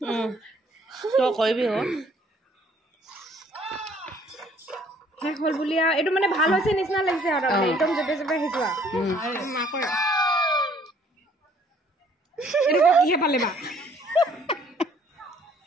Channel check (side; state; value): both; normal; correlation 0.60